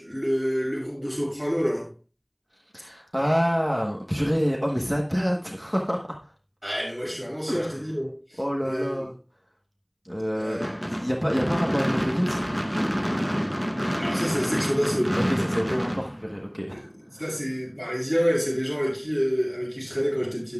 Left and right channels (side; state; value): both; identical; correlation 1.00